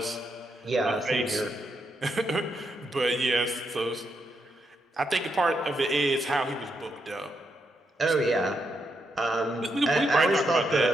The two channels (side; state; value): both; normal; correlation 0.81